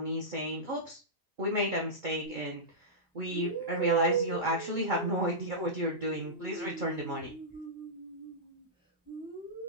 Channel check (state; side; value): normal; both; correlation -0.14